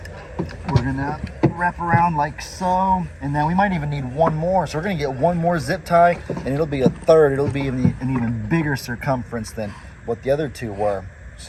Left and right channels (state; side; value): identical; both; correlation 1.00